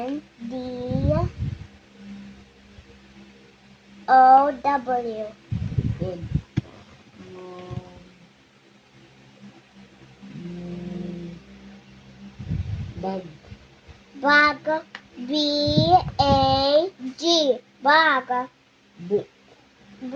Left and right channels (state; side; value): identical; both; correlation 1.00